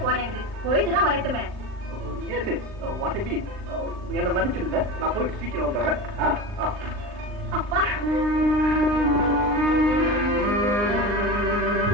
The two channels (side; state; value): left; late; 39 ms